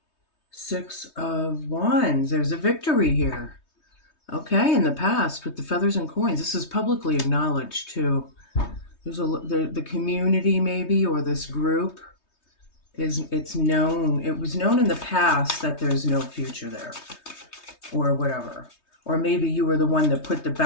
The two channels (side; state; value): right; late; 3.2 ms